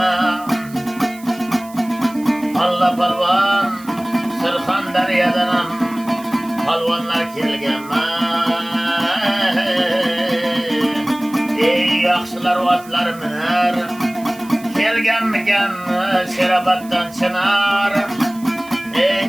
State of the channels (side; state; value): right; noise; hiss, 21 dB below the sound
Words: Allah polvon, Surxondaryodan ham polvonlar kelganma. Ey yaxshilar otlar minar, kelganmikan Sheroboddan chinar.